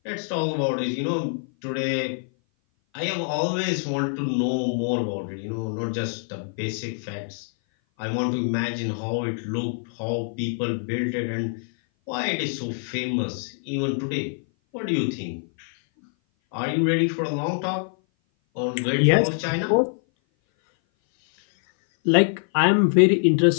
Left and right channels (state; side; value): silent; right; 57 dB below the other